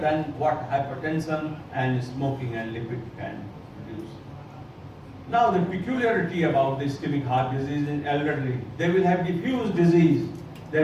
what hypertension and smoking and lipid can produce. Now the peculiarity about the ischemic heart disease in elderly, they will have diffuse disease, they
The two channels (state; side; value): identical; both; correlation 1.00